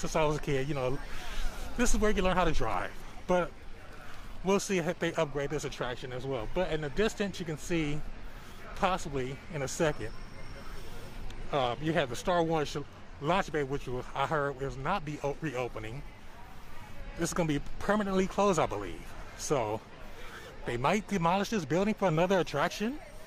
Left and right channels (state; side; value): identical; both; correlation 1.00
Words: I was a kid, you know, this is where you learn how to drive. But we'll see if they upgrade this attraction as well. But in the distance, you can see, possibly in a second, you have the Star Wars launch bay, which I heard will not be reopening. This is going to be permanently closed, I believe. So they might demolish this building for another attraction.